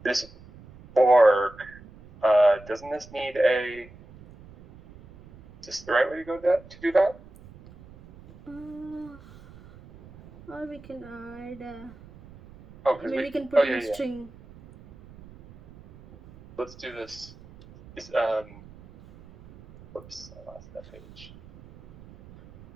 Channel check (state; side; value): noise; right; rumble, 21 dB below the sound